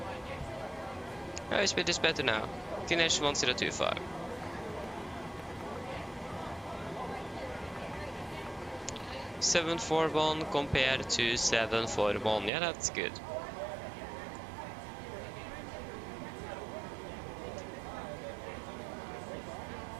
Oh, speed is better now. QNH 1025. $741 compared to $741. Yeah, that's good.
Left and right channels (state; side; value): drops out; left; at 12.5 s